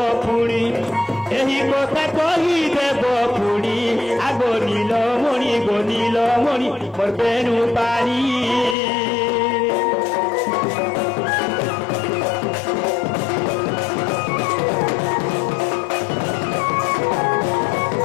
পুরি এই কথা কহি দেব পুরি আগো নীলমণি গো নীলমণি মোর বেণু পাড়ি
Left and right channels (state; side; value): drops out; right; at 8.8 s